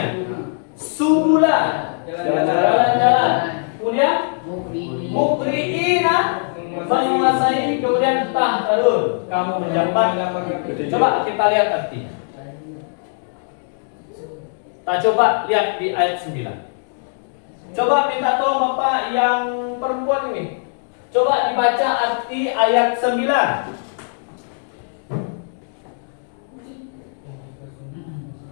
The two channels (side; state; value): right; silent; digital silence